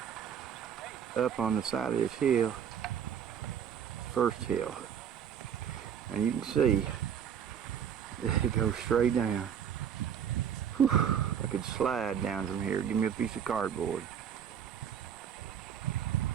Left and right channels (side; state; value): left; quieter; 8.5 dB